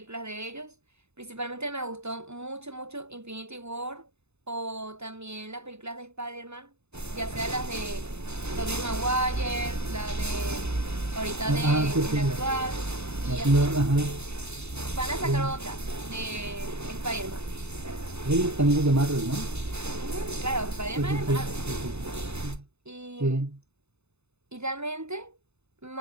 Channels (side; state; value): left; late; 0.81 ms